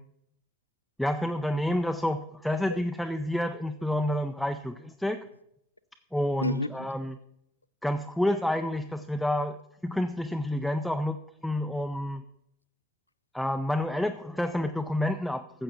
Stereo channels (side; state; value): both; normal; correlation 0.82